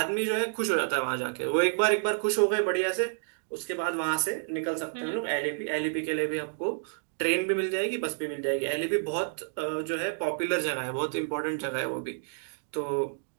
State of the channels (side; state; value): left; silent; digital silence